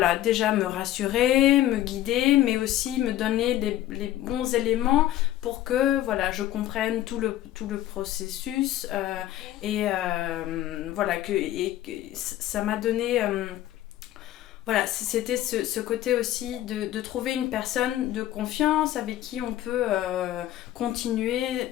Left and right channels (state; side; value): quieter; right; 13.7 dB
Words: déjà me rassurer, me guider, mais aussi me donner les bons éléments pour que je comprenne tout le processus et ça m'a donné... c'était ce côté aussi de trouver une personne de confiance avec qui on peut continuer